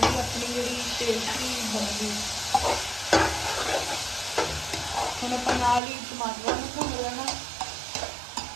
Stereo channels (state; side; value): drops out; left; at 5.8 s